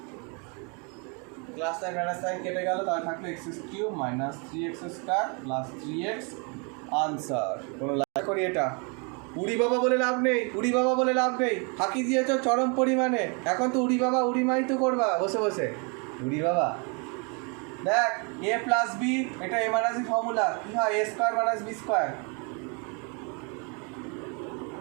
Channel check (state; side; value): quieter; left; 34.3 dB